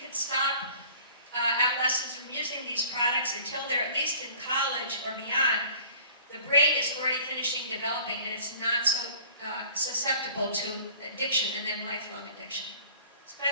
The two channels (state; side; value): inverted; both; correlation -0.50